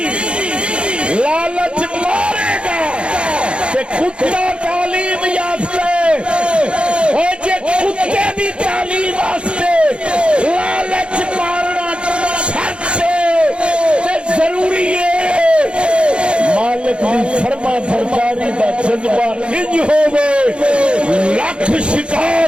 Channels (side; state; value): left; late; 0.057 ms